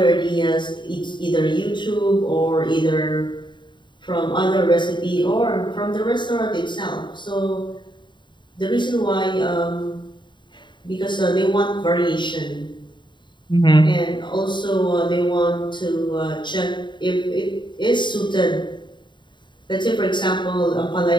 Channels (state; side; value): late; right; 0.23 ms